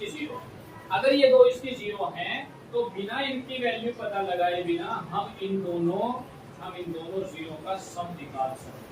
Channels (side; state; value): both; identical; correlation 1.00